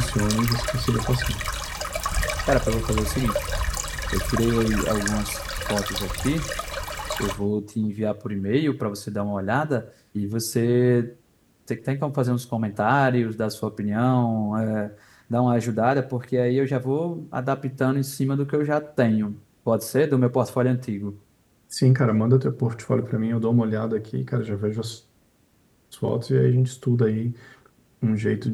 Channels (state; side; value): identical; both; correlation 1.00